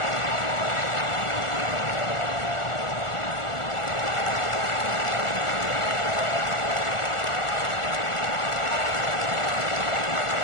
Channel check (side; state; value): right; late; 1.4 ms